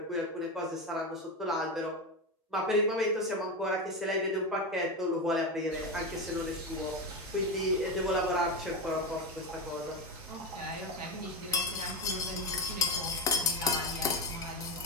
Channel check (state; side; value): normal; both; correlation 0.15